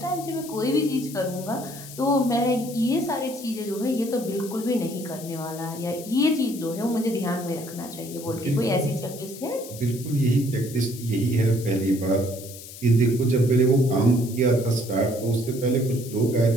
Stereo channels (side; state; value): left; noise; hiss, 14 dB below the sound